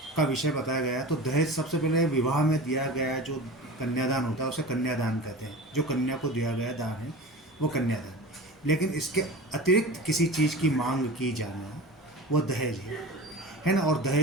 का विषय बताया गया। तो दहेज सबसे पहले विवाह में दिया गया जो कन्यादान होता है उसे कन्यादान कहते हैं। जो कन्या को दिया गया दान है वो कन्यादान। लेकिन इसके अतिरिक्त किसी चीज़ की मांग की जाना वो दहेज है ना। और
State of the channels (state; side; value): normal; both; correlation 0.33